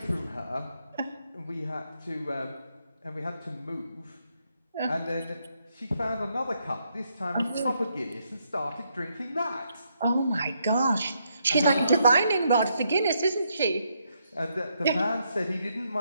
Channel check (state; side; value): inverted; both; correlation -0.77